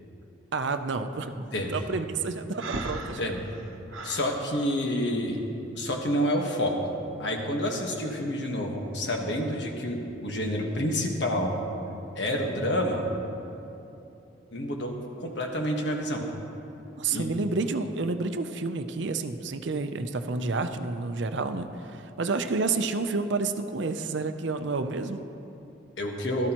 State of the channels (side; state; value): both; normal; correlation 0.31